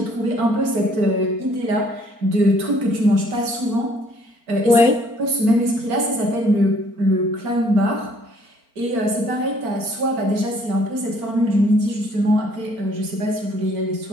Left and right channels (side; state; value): left; late; 4.4 ms